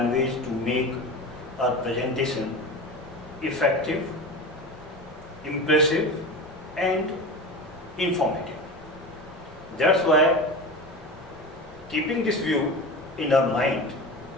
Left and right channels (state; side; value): normal; both; correlation 0.28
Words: to make our presentation effective, impressive and informative. That's why, keeping this view in our mind,